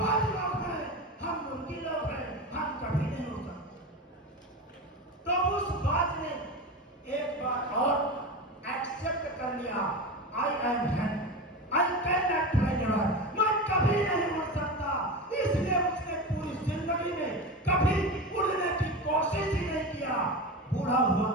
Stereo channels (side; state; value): both; normal; correlation 0.25